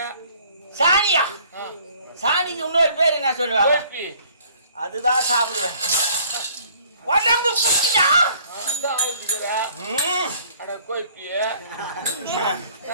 சாணியா? சாணிக்கு இன்னொரு பேர் என்ன சொல்லுவாங்க? அதுதான் சாப்பிடுவேன். உடம்பு குச்சியா?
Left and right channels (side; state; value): both; inverted; correlation -0.57